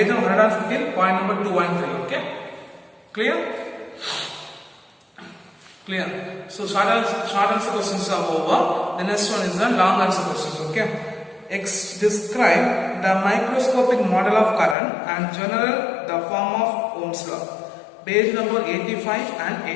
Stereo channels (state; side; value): drops out; right; at 14.8 s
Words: number 115, point number 2 and 3. Okay? Clear? Clear. So short answer questions are over. The next one is the long answer questions. Okay? Describe the microscopic model of current and general the form of Ohm's law. Page number 85